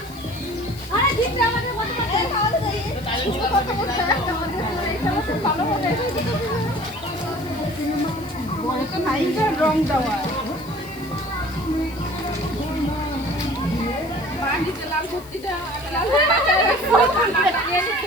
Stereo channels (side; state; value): left; noise; hiss, 21 dB below the sound